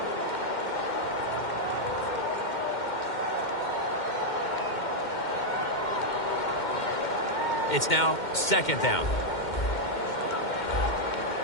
It's now second down.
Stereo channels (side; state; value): right; late; 2.1 ms